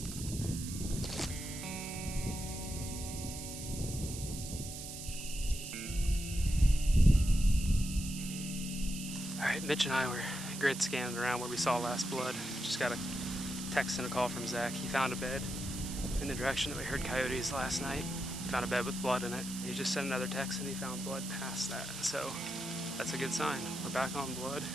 Alright, Mitch and I were grid scanning around where we saw last blood. Just got a text and a call from Zach. He found a bed in the direction that we heard coyotes last night. He found a bed with blood in it. He just sent another text and he found blood past that. So that's a good sign. We're back on blood.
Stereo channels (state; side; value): noise; right; hiss, 9 dB below the sound